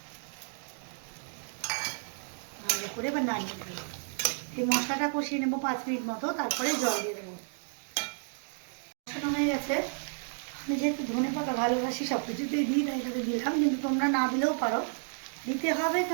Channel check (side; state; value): left; silent; 57 dB below the other